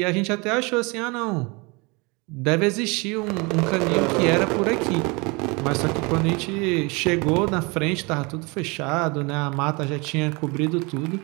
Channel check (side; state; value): left; quieter; 27.9 dB